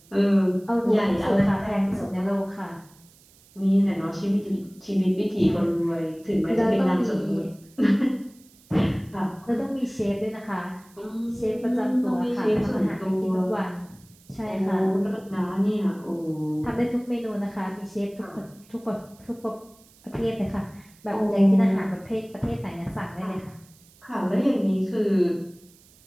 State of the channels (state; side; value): noise; right; hiss, 28 dB below the sound